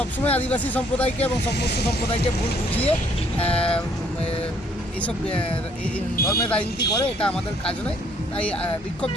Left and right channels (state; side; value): normal; both; correlation 0.64